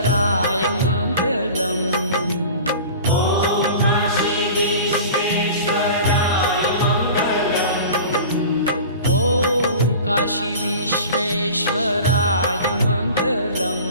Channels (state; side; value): inverted; both; correlation -0.38